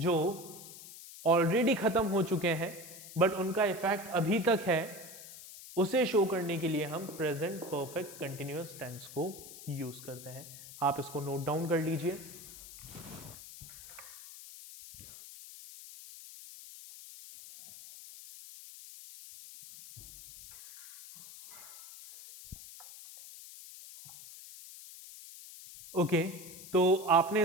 ऑलरेडी खत्म हो चुके हैं बट उनका इफेक्ट अभी तक है, उसे शो करने के लिए हम प्रेजेंट परफेक्ट कंटिन्यूअस टेंस को यूज करते हैं। आप इसको नोट डाउन कर लीजिए। ओके, तो आपने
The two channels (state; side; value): noise; left; hiss, 15 dB below the sound